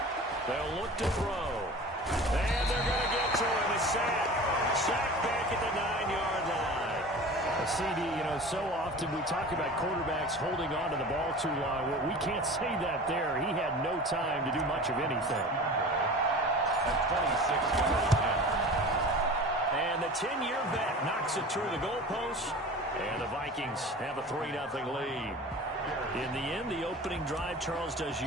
They'll look to throw. And they're going to get to him. A sack. Sack back at the 9-yard line. CD, you know, so often we talk about quarterbacks holding on to the ball too long. Well, we can't say that there. He had no time to do much of anything. At 26 yards. And the 10-year vet knocks it through the goalpost. And the Vikings have a 3-0 lead. In the end, the opening drive, Charles, does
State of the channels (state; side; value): normal; both; correlation 0.37